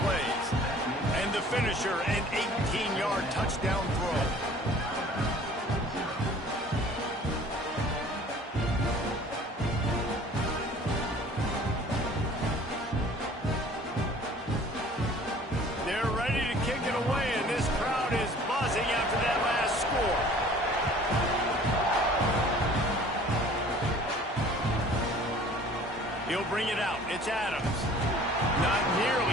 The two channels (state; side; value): normal; both; correlation 0.50